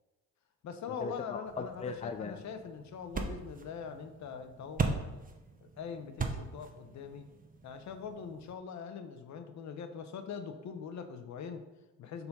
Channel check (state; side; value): normal; both; correlation 0.37